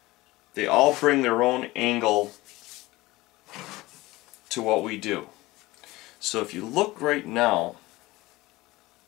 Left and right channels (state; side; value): quieter; right; 19.6 dB